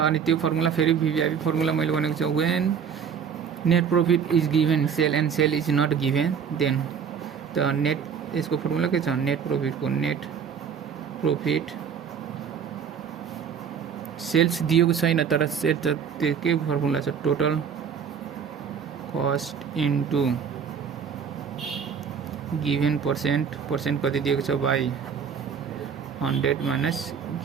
त्यो फर्मुला फेरि VVIP फर्मुला मैले भनेको छ, when net profit is given sale and sale is not given then. त नेट यसको फर्मुला के छ, नेट प्रॉफिट सेल्स दिएको छैन तर सेल त त्यो के फर्मुला छ, total cost into given percent कति दिएको छ बाई 100 माइनस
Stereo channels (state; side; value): quieter; left; 7.1 dB